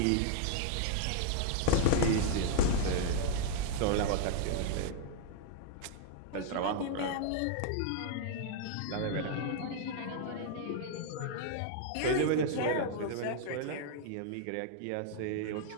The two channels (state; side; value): different; both; correlation -0.01